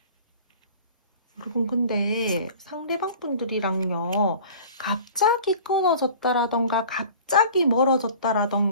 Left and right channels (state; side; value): inverted; both; correlation -0.44